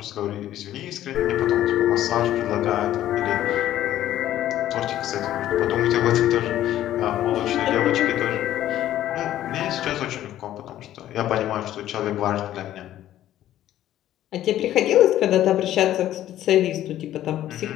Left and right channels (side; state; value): right; quieter; 12.8 dB